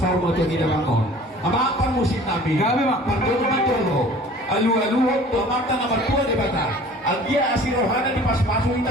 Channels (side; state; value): both; normal; correlation 0.47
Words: mo to ginabangon. Amapan musik namin. Gabi, Mak. Patulo matolo. Alu-aluhot to mata na batua di bata. Agia asirohana di pas-pasu